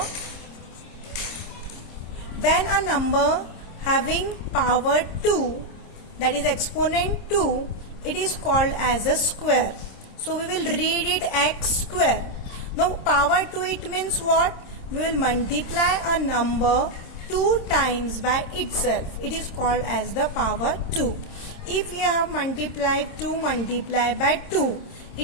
When a number having power 2, that is exponent 2, it is called as a square. So we will read it x square. Now power 2, it means what? We will multiply a number 2 times by itself. It is called as the power 2. If we have multiplied 2 multiplied by 2,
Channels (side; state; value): right; late; 26 ms